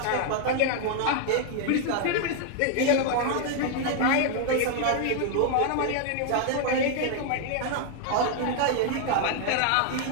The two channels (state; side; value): different; both; correlation 0.00